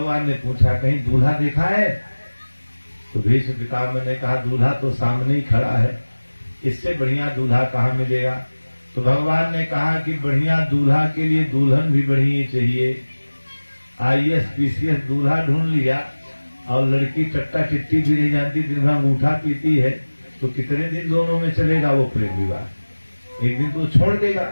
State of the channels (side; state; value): both; inverted; correlation -1.00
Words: ने पूछा। कहीं दूल्हा देखा है? तो भीष्म पितामह ने कहा दूल्हा तो सामने ही खड़ा है, इससे बढ़िया दूल्हा कहां मिलेगा? तो भगवान ने कहा कि बढ़िया दूल्हा के लिए दुल्हन भी बढ़िया चाहिए। IAS PCS दूल्हा ढूंढ लिया और लड़की चट्टा चिट्टी भी नहीं जानती, दिन भर अंगूठा पीती है, तो कितने दिन दोनों में चलेगा वो प्रेम विवाह? एक दिन तो छोड़ देगा।